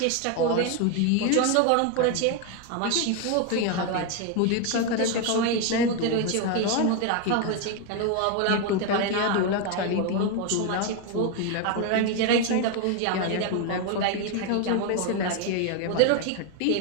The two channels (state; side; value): different; both; correlation 0.01